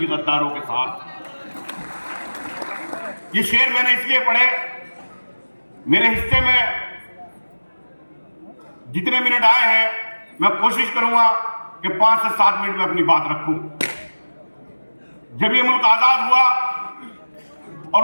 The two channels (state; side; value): inverted; both; correlation -1.00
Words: गद्दारों के साथ। ये शेर मैंने इसलिए पढ़े, मेरे हिस्से में जितने मिनट आए हैं मैं कोशिश करूंगा कि 5 से 7 मिनट में अपनी बात रखूं। जब ये मुल्क आजाद हुआ